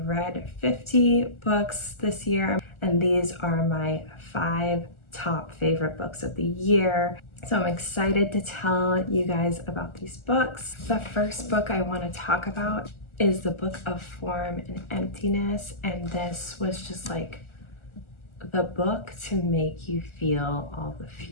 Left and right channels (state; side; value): late; right; 1.4 ms